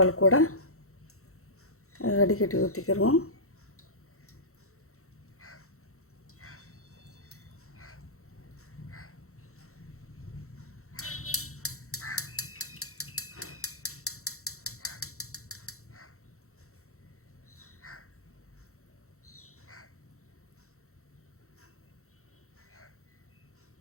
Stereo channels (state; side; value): late; right; 0.63 ms